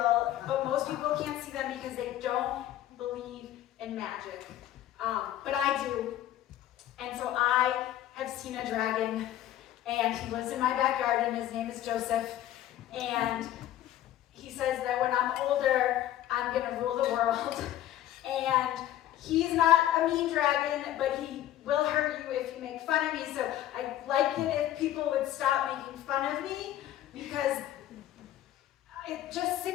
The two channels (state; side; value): quieter; right; 12.8 dB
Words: but most people can't see them because they don't believe in magic. But I do. And so I have seen a dragon, and he lives in my backyard, and his name is Joseph. And he says that when I'm older, I'm going to rule the world. And he's not a mean dragon, but he will hurt you if you make fun of me. So I'd like it if people would stop making fun of me because I'm just sick